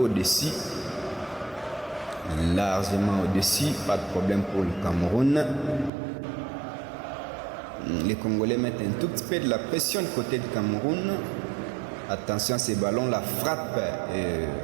Largement au-dessus, pas de problème pour le Cameroun. Les Congolais mettent un tout petit peu de la pression du côté du Cameroun. Attention à ces ballons, la frappe.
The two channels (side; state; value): left; drops out; at 5.9 s